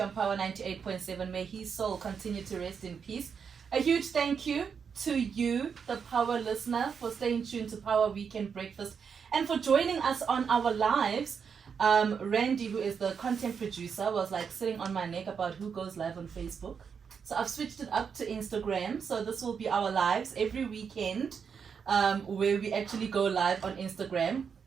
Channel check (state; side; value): quieter; left; 6.5 dB